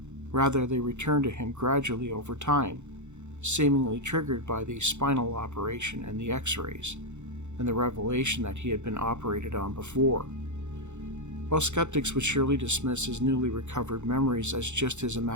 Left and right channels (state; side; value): late; left; 0.83 ms